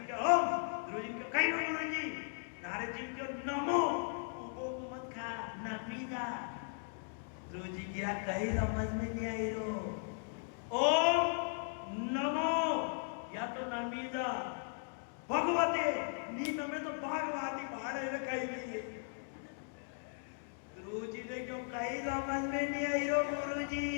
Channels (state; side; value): silent; right; digital silence